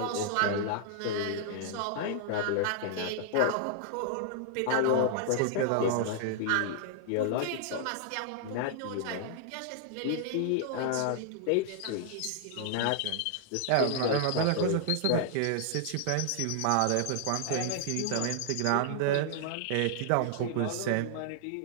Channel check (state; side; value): different; both; correlation -0.01